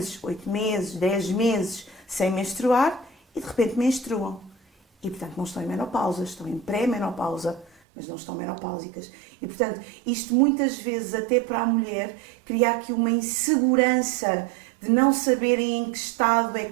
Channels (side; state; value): left; drops out; at 7.7 s